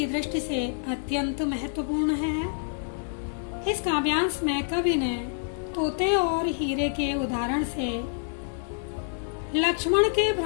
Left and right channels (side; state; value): right; silent; digital silence